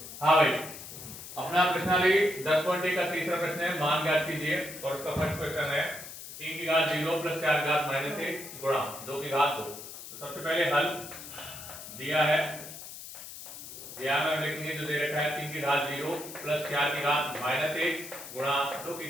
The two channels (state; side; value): noise; left; hiss, 12 dB below the sound